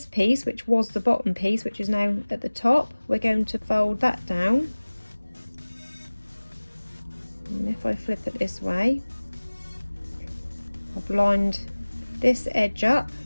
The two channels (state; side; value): inverted; both; correlation -1.00